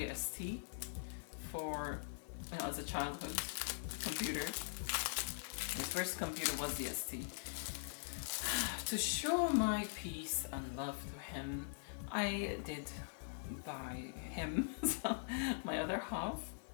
ST for, you know, as a childhood computer. His first computer was the ST. To show my peace and love to him, I did buy him, my other half,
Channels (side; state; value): right; silent; digital silence